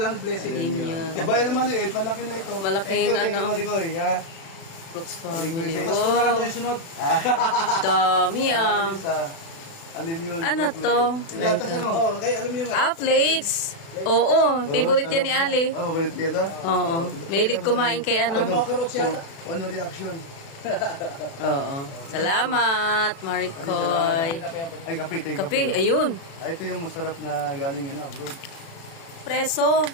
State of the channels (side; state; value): right; late; 36 ms